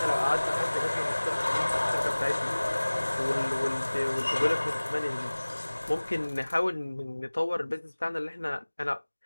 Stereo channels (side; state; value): both; inverted; correlation -1.00